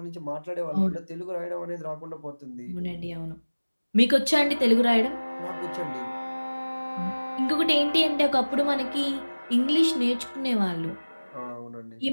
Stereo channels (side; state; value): both; inverted; correlation -1.00